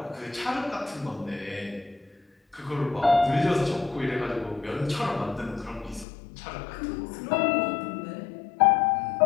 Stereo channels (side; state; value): right; drops out; at 6.1 s